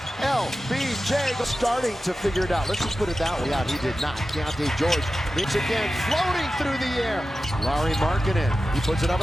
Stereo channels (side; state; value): both; normal; correlation 0.93